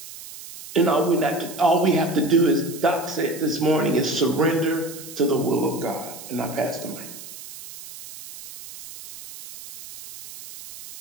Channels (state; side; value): noise; right; hiss, 14 dB below the sound